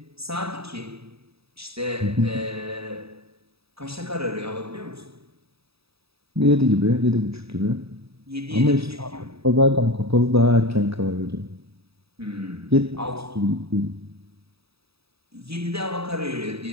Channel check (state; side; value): late; left; 0.77 ms